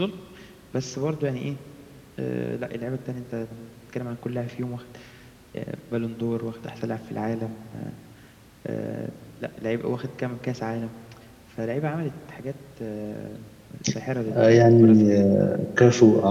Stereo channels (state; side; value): identical; both; correlation 1.00